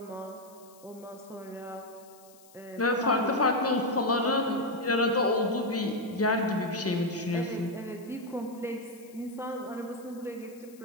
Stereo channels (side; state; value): left; noise; hiss, 25 dB below the sound